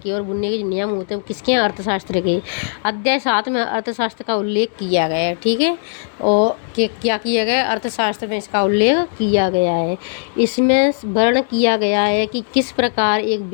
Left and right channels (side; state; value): right; silent; digital silence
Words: और बुनने के जो नियम होते हैं वो किसके हैं? अर्थशास्त्र के। अध्याय 7 में अर्थशास्त्र का उल्लेख किया गया है। ठीक है, और क्या किया गया है? अर्थशास्त्र में इसका उल्लेख किया गया है। इसमें वर्णन किया गया है कि किस प्रकार एक